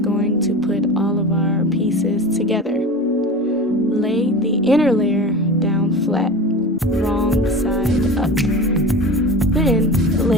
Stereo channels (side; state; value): both; normal; correlation 0.32